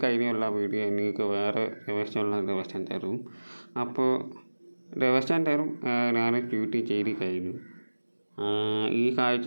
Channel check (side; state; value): both; inverted; correlation -1.00